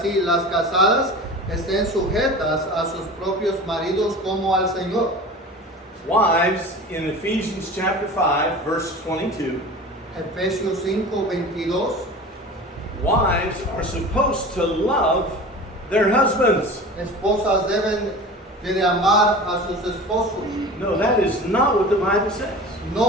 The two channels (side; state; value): both; normal; correlation 0.36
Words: las casadas estén sujetas a sus propios maridos como al Señor. Wives, in Ephesians chapter 5, verse 22, Efesios 5:22. wives are supposed to love their husbands. Esposas deben de amar a sus esposos. No, that is not what the Bible says.